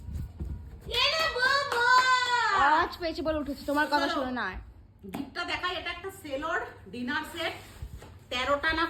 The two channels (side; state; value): both; identical; correlation 1.00